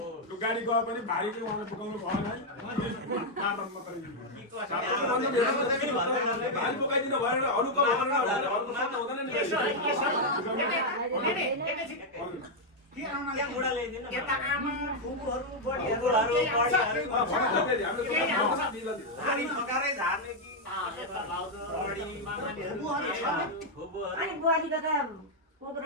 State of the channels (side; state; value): both; normal; correlation -0.01